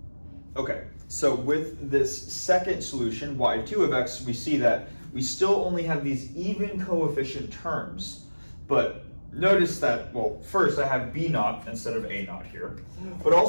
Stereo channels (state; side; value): inverted; both; correlation -1.00